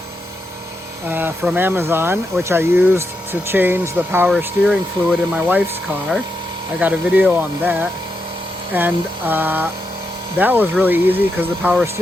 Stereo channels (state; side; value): normal; both; correlation 0.84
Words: from Amazon, which I used to change the power steering fluid in my wife's car. I got a video on that, and that was really easy because the power